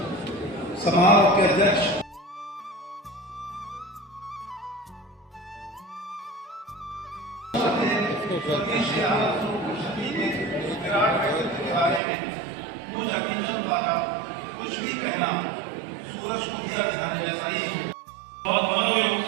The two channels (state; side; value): drops out; left; at 12.0 s